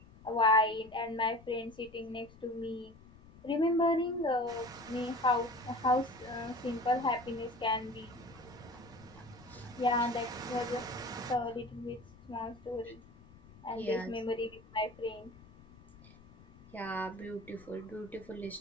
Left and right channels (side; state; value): left; noise; rumble, 22 dB below the sound